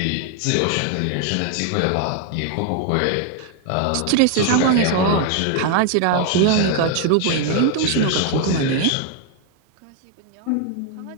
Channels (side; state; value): both; different; correlation 0.00